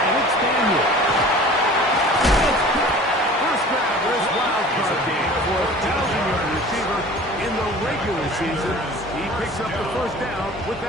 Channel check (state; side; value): normal; both; correlation 0.43